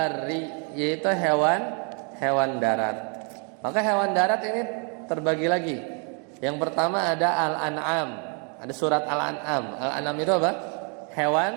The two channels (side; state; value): left; quieter; 38.8 dB